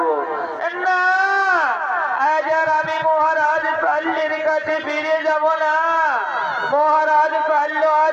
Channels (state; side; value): identical; both; correlation 1.00